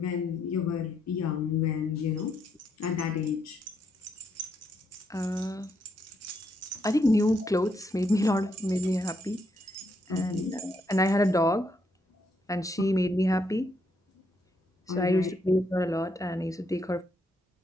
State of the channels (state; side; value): normal; both; correlation 0.76